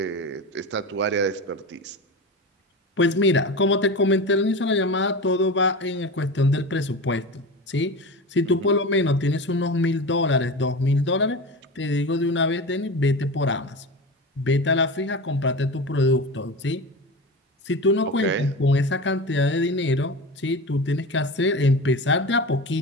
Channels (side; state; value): both; normal; correlation 0.27